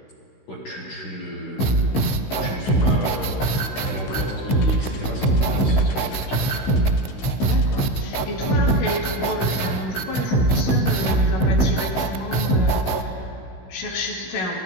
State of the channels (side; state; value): right; late; 16 ms